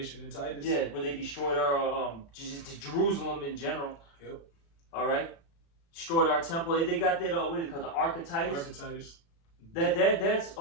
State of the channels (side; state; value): right; late; 36 ms